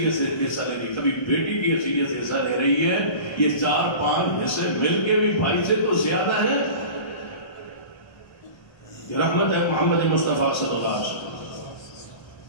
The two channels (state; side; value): late; right; 1.3 ms